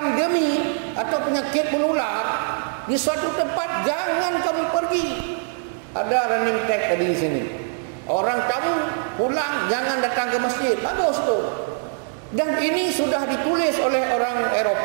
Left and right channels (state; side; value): silent; left; 60 dB below the other